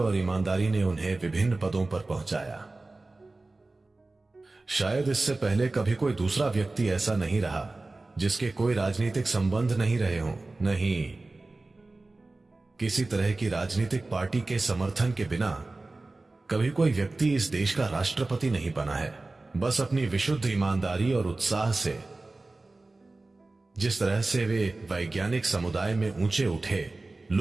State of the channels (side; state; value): left; quieter; 3.2 dB